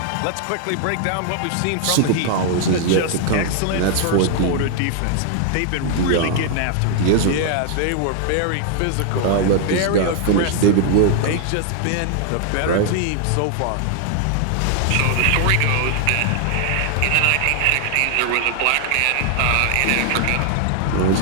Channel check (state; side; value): different; both; correlation 0.00